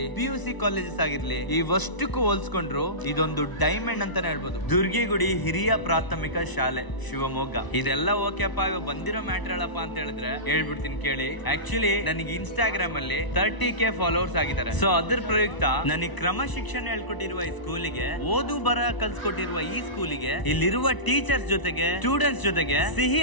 PUC ಕಾಲೇಜಸ್ ಆಗಿರ್ಲಿ, ಇವಷ್ಟಕ್ಕೂ ಹೋಲ್ಸ್ಕೊಂಡ್ರು ಇದೊಂದು ಡೈಮಂಡ್ ಅಂತಾನೆ ಹೇಳ್ಬೋದು. ದುರ್ಗಿಗುಡಿ ಹಿರಿಯ ಪ್ರಾಥಮಿಕ ಶಾಲೆ, ಶಿವಮೊಗ್ಗ. ಇದೆಲ್ಲ ಓಕೆಪ್ಪ. ಇವಾಗ ಬಂದಿರೋ ಮ್ಯಾಟರ್ ಹೇಳಪ್ಪ ಅಂತ ಹೇಳಿದ್ರೆ ಹೇಳ್ಬಿಡ್ತೀನಿ ಕೇಳಿ. ಆಕ್ಚುಲಿ ನನಗೆ ಇನ್ಸ್ಟಾಗ್ರಾಮ್ ಅಲ್ಲಿ 30K ಫಾಲೋವರ್ಸ್ ಆಗಿದ್ದಾರೆ. ಸೊ ಅದ್ರ ಪ್ರಯುಕ್ತ ನನಗೆ ಕ್ರಮ ಶಿಕ್ಷಣ ಹೇಳ್ಕೊಟ್ಟಿರುವ ಈ ಸ್ಕೂಲಿಗೆ, ಓದು ಬರ ಕಲ್ಸ್ಕೊಟ್ಟಿರುವ ಈ ಸ್ಕೂಲಿಗೆ, ಇಲ್ಲಿರುವ ಟೀಚರ್ಸ್ ಜೊತೆಗೆ, ಸ್ಟೂಡೆಂಟ್ಸ್ ಜೊತೆಗೆ ಸಿಹಿ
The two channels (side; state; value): right; late; 1.0 ms